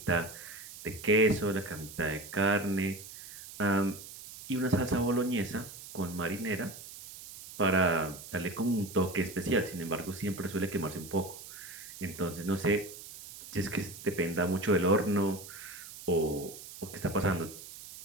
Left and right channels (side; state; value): right; noise; hiss, 14 dB below the sound